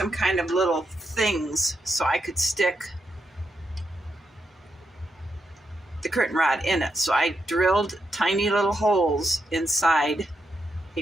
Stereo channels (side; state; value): both; normal; correlation 0.83